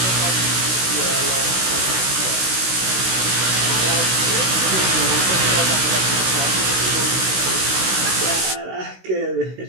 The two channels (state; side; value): late; left; 16 ms